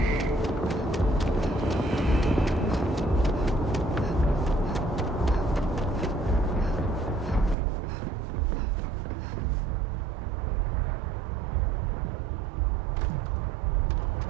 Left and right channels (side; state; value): left; drops out; at 7.6 s